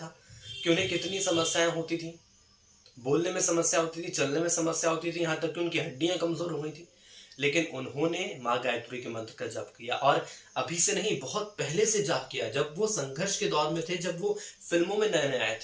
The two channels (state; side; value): identical; both; correlation 1.00